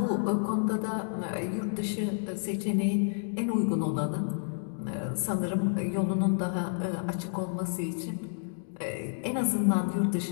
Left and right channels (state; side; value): silent; right; digital silence